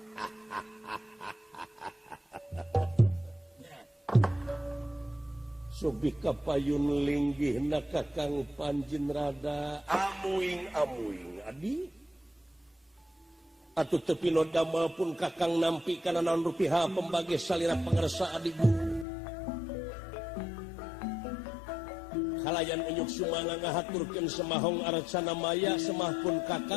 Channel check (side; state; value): right; drops out; at 19.1 s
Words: Sobi kapayun linggihna Kakang Pancinrada. Amuing adi. Atuh tepi no damel pun Kakang nampi kana naon rupiah pembagi salira pangersa adi guru. Kalayan unyuk sumanga ngahaturkeun semahong aracana maya semah pun